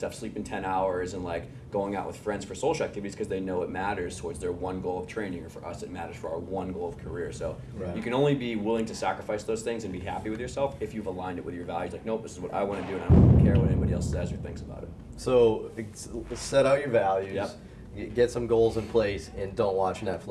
sleeping 10 hours and like going out with friends for social activities because they know it matters towards their one goal of training, or for us it matters for our one goal of career. So you can only be willing to sacrifice those things and be happy with yourself if you've aligned it with your values. Like, nope, this is what I want to do and I don't care what anybody else says or thinks about it. So set out your values, get some goals in place, and don't watch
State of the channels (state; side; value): identical; both; correlation 1.00